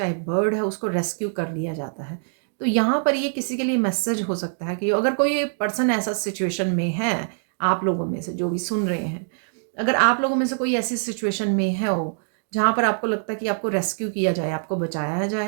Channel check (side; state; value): left; silent; digital silence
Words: बर्ड है, उसको रेस्क्यू कर लिया जाता है। तो यहाँ पर ये किसी के लिए मैसेज हो सकता है कि अगर कोई पर्सन ऐसा सिचुएशन में है, आप लोगों में से जो भी सुन रहे हैं, अगर आप लोगों में से कोई ऐसी सिचुएशन में है हो, जहाँ पर आपको लगता है कि आपको रेस्क्यू किया जाए, आपको बचाया